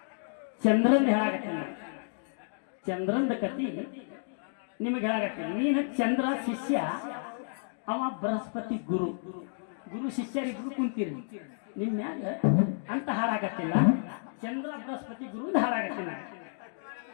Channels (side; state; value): right; silent; digital silence